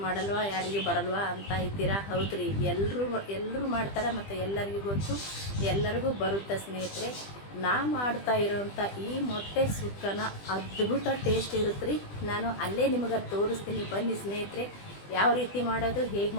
ಮಾಡಲ್ವಾ, ಯಾರಿಗೂ ಬರಲ್ವಾ ಅಂತ ಇದ್ದೀರಾ? ಹೌದ್ರಿ, ಎಲ್ಲರೂ ಮಾಡ್ತಾರೆ ಮತ್ತು ಎಲ್ಲರಿಗೂ ಗೊತ್ತು, ಎಲ್ಲರಿಗೂ ಬರುತ್ತೆ ಸ್ನೇಹಿತರೆ. ನಾ ಮಾಡ್ತಾ ಇರೋವಂಥ ಈ ಮೊಟ್ಟೆ ಸುಕ್ಕನ ಅದ್ಭುತ ಟೇಸ್ಟ್ ಇರುತ್ತೆ ರೀ. ನಾನು ಅಲ್ಲೇ ನಿಮಗೆ ತೋರಿಸ್ತೀನಿ, ಬನ್ನಿ ಸ್ನೇಹಿತರೆ. ಯಾವ ರೀತಿ ಮಾಡೋದು, ಹೇಗೆ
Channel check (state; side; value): late; right; 20 ms